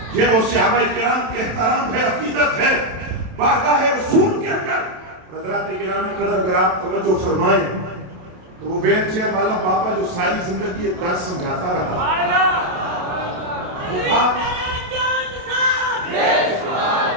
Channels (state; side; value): late; left; 27 ms